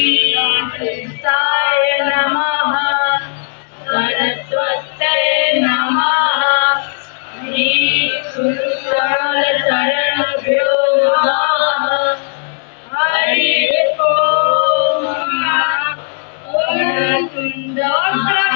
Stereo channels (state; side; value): silent; right; 70 dB below the other